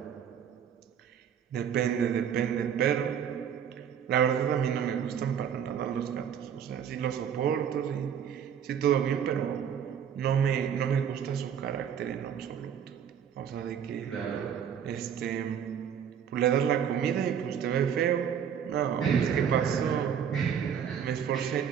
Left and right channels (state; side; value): quieter; left; 8.3 dB